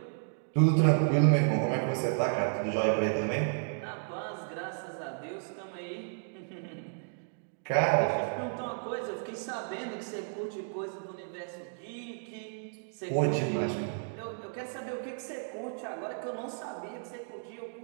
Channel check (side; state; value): left; silent; digital silence